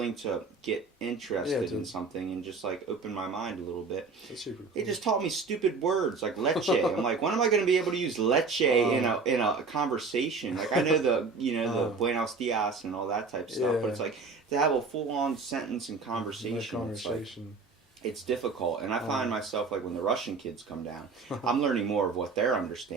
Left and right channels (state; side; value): quieter; left; 4.4 dB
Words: to get interested in something and just like open my mind a little bit. That's super cool. They just taught me stupid words like leche. I'm like, when am I going to be able to use leche in a conversation? Like I know the buenos dias and all that type of stuff, but it's like to have a full on sentence and conversation. It's difficult, and I find myself like when the Russian kids come down, I'm learning more of what they're